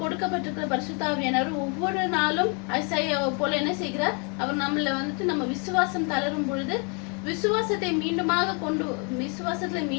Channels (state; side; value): quieter; right; 35.9 dB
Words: கொடுக்கப்பட்டிருக்கிற பரிசுத்த ஆவியானவர் ஒவ்வொரு நாளும் ஐசாயாவை போல என்ன செய்கிறார்? அவர் நம்மள வந்துட்டு நம்ம விசுவாசம் தளரும் பொழுது விசுவாசத்துல